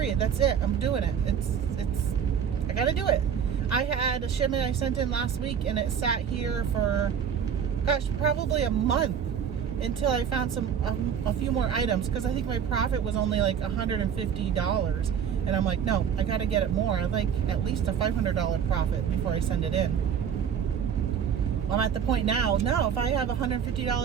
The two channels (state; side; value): quieter; left; 7.9 dB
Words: That's it. I'm doing it. I gotta do it. I had a shipment I sent in last week and it sat here for, probably a month until I found a few more items, because I think my profit was only like $150. And I'm like, no, I gotta get it more. I'd like at least a $500 profit before I send it in. I'm at the point now, no, if I have a